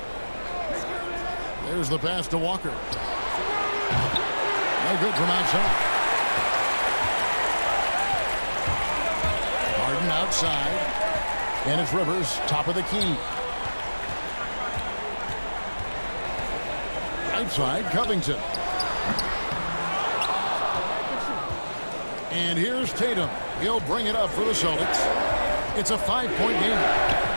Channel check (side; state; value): both; inverted; correlation -1.00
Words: There's the pass to Walker. No good from outside. Harden outside. And it's Rivers, top of the key. Right side, Covington. And here's Tatum. He'll bring it up for the Celtics. It's a 5-point game.